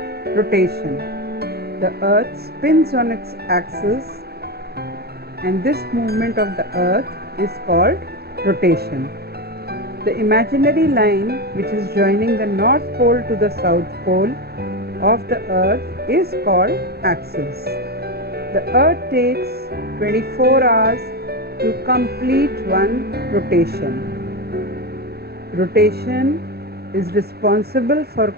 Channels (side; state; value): left; late; 0.46 ms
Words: rotation. The Earth spins on its axis, and this movement of the Earth is called rotation. The imaginary line which is joining the North Pole to the South Pole of the Earth is called axis. The Earth takes 24 hours to complete one rotation. Rotation is responsible for